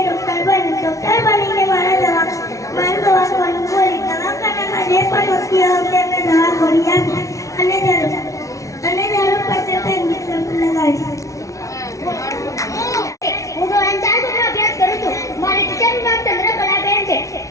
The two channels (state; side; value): late; right; 0.15 ms